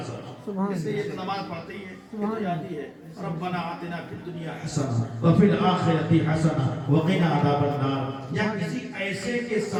اس لیے یہ نماز پڑھتی ہے تو یادی ہے ربنا آتنا فی الدنیا حسنہ وفی الآخرۃ حسنہ وقنا عذاب النار۔ یا کسی ایسے کے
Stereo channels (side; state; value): both; identical; correlation 1.00